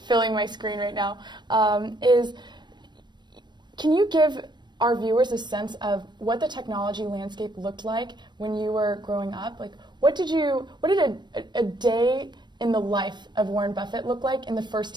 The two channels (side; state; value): left; late; 0.22 ms